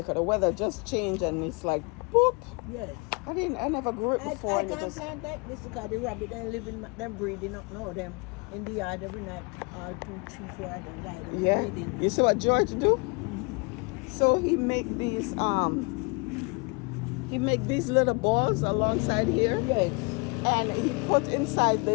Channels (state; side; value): quieter; right; 31.7 dB